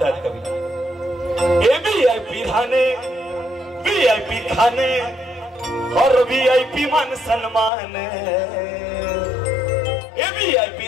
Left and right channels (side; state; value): right; drops out; at 7.7 s